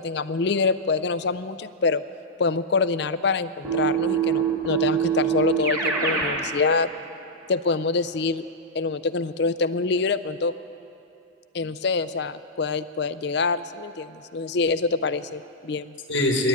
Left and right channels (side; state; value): both; normal; correlation -0.09